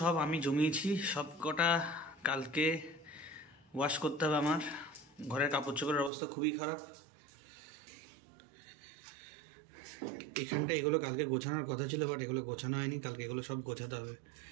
আমি জমিয়েছি, সব কটা কালকে ওয়াশ করতে হবে আমার। ঘরের কাপড় চোপড়ের অবস্থা খুবই খারাপ। এখানটা এগুলো কালকে গোছানোর কথা ছিল, বাট এগুলো গোছানো হয়নি। কালকে এগুলো সব গোছাতে হবে,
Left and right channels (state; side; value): drops out; left; at 6.1 s